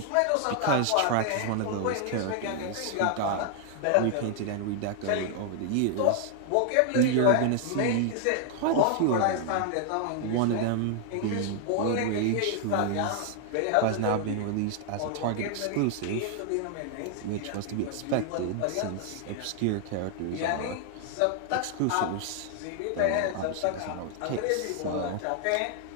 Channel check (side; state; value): both; different; correlation 0.00